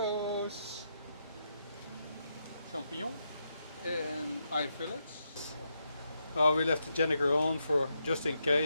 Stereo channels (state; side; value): inverted; both; correlation -0.82